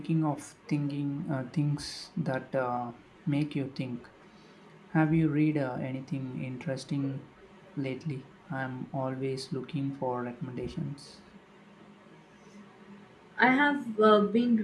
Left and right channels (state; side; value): identical; both; correlation 1.00